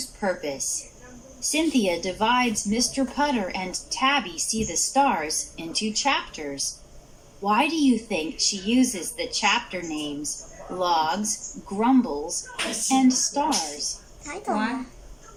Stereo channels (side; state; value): both; identical; correlation 1.00